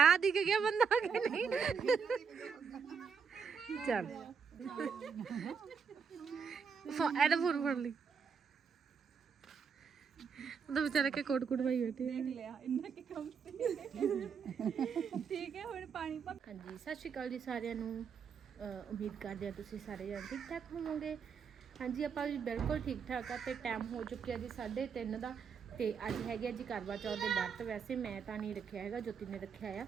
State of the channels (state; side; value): quieter; left; 6.3 dB